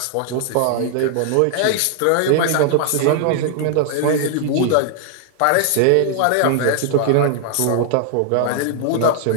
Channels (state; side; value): different; both; correlation 0.00